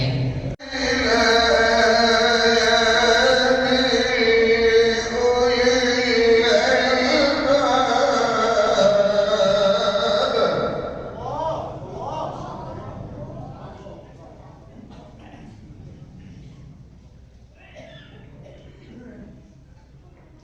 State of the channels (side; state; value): both; identical; correlation 1.00